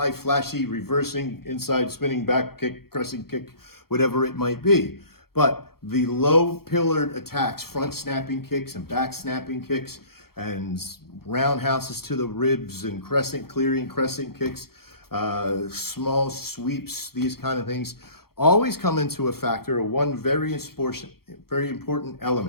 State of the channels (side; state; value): right; late; 0.94 ms